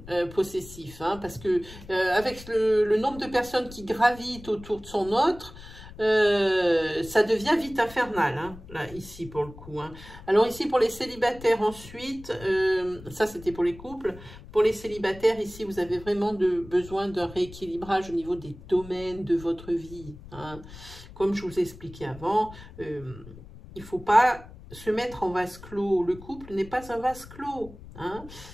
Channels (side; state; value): left; noise; rumble, 17 dB below the sound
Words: possessif. Hein, parce que avec le nombre de personnes qui gravitent autour de son autre, ça devient vite infernal, hein, là, ici, pour le coup. Hein. Alors, ici, pour les célibataires, ensuite, ça, c'était pour les couples. Pour les célibataires, ici, vous avez vraiment besoin d'un rééquilibrage au niveau des domaines de votre vie. Hein. Comme je vous ai expliqué avant, il ne faut pas se mettre en vase clos. Le couple n'est pas un vase clos. Hein.